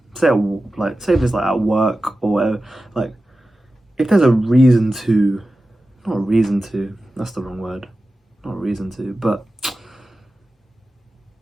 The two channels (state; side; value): normal; both; correlation 0.94